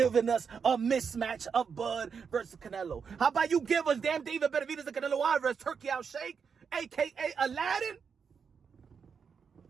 us a mismatch of Bud versus Canelo. How about you give us damn David Benavidez and Canelo Alvarez, Turki Alalshikh, a.k.a. Aladdin?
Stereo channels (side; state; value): left; quieter; 6.2 dB